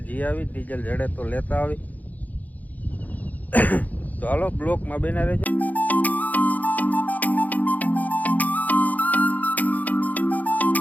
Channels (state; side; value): late; right; 0.079 ms